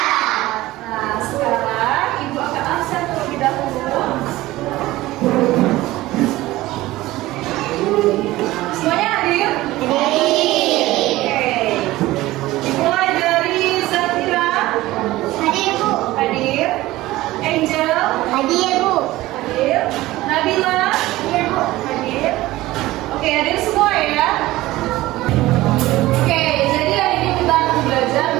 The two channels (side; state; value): left; quieter; 17.5 dB